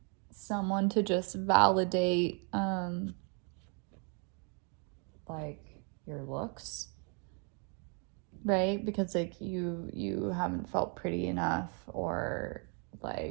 someone to just validate, like, your looks, right? Because, like, you haven't felt pretty enough or,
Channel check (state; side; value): quieter; left; 38.3 dB